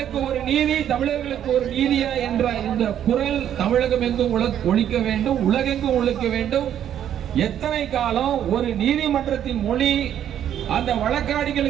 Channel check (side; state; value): left; quieter; 10.1 dB